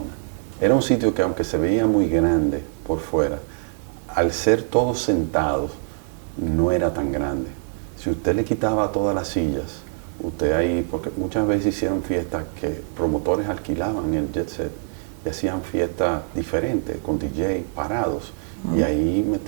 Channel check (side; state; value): left; silent; digital silence